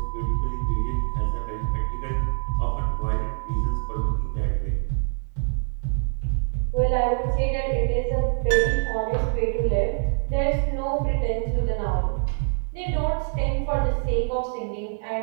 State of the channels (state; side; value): silent; left; 62 dB below the other